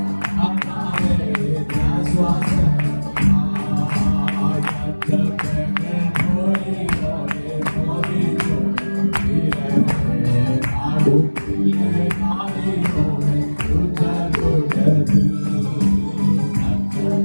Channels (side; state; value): both; inverted; correlation -1.00